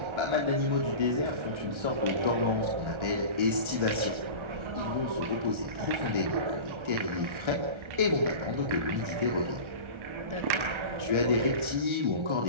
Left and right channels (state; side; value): late; left; 1.3 ms